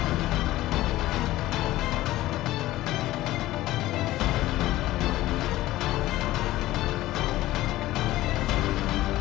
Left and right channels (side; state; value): right; quieter; 16.3 dB